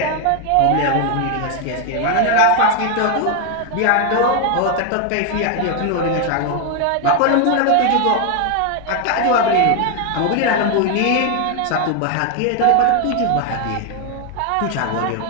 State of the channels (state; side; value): different; both; correlation 0.01